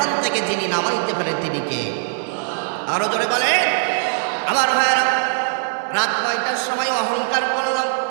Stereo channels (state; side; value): silent; left; digital silence